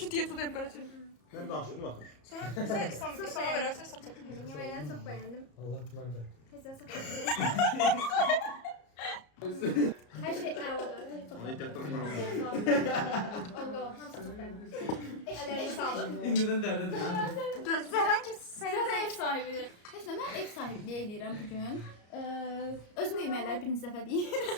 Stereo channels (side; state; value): right; late; 34 ms